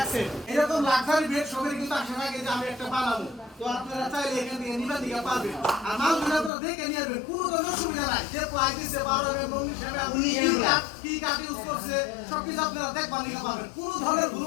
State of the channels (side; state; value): right; drops out; at 6.5 s